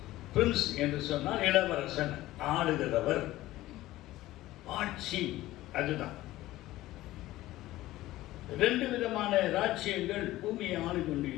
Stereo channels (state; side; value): quieter; right; 16.3 dB